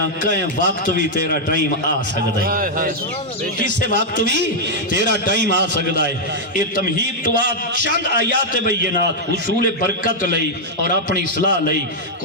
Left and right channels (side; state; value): both; normal; correlation -0.04